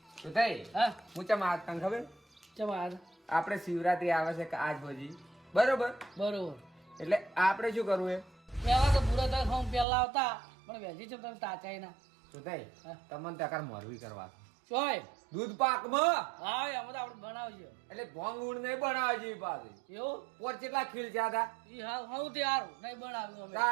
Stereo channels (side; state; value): left; drops out; at 9.9 s